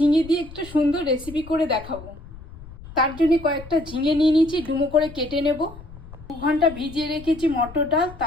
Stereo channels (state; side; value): noise; left; rumble, 17 dB below the sound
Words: দিয়ে একটা সুন্দর রেসিপি করে দেখাবো। তার জন্য কয়েকটা ঝিঙে নিয়ে নিয়েছি, ডুমো করে কেটে নেব। 2 ঘন্টা ভিজিয়ে রেখেছি মটর ডাল,